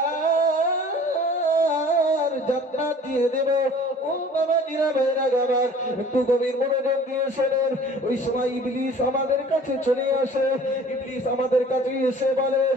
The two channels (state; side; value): normal; both; correlation 0.48